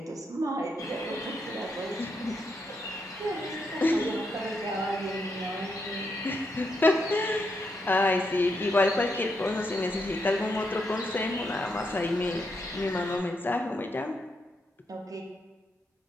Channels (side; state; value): both; normal; correlation 0.80